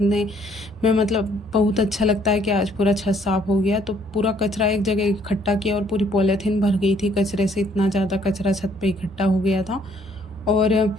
में बहुत अच्छा लगता है कि आज पूरा छत साफ़ हो गया। तो पूरा कचरा एक जगह इकट्ठा किया और पूरी पॉलीथीन भर गई थी कचरे से, इतना ज़्यादा कचरा छत पे इकट्ठा हो गया था। और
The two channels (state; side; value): normal; both; correlation 0.64